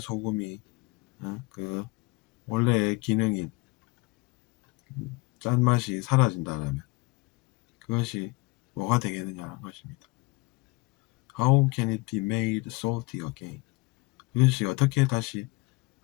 그 원래의 기능인 짠맛이 사라진다면 그것이 뭐가 되겠느냐는 것입니다. How can it be made salty again? 그것이 어떻게 다시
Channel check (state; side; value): quieter; right; 24.6 dB